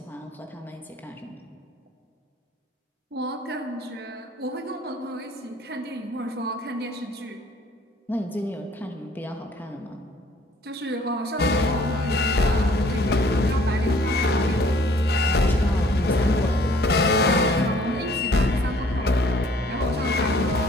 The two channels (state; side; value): normal; both; correlation 0.57